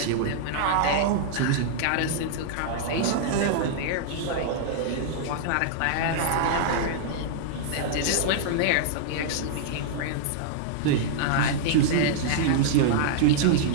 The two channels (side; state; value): both; different; correlation -0.01